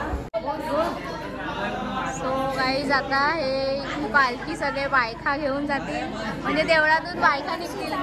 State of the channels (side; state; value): both; identical; correlation 1.00